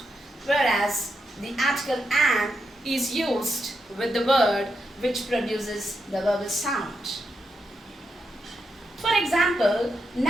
whereas the article an is used with the word which produces the vowel sound. For example,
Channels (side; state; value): both; normal; correlation 0.84